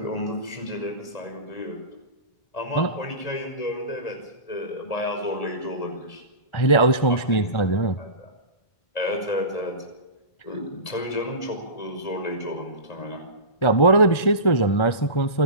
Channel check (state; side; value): late; right; 1.4 ms